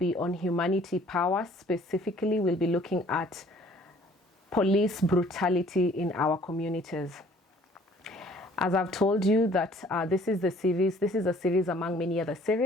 on humanity power. Specifically, we'll be looking at police brutality in our communities. As I've told you that this is a series among many other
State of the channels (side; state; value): both; normal; correlation 0.56